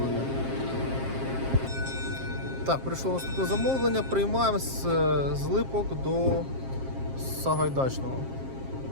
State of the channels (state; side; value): late; left; 7.5 ms